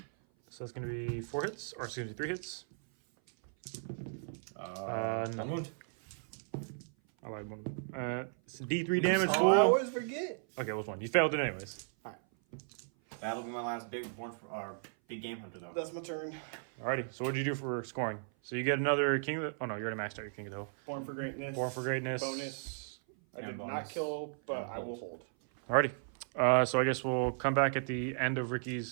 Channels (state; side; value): silent; left; 54 dB below the other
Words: So that's going to be 4 hits, or excuse me, 3 hits. No. 1 wound. I lied, one. It's D3 damage, I fool. always forget. Okay, what's one? You failed it anyways. That'll be my last big game hunter, though. That's my turn. Alrighty, so what'd you do for scoring? So you get another King of the... Oh no, you already maxed out your King of the Hill. Born for greatness. Born for Greatness. Bonus. I And did not bonus. kill, but And I will hold. hold. Alrighty. So I guess we'll come back at the end of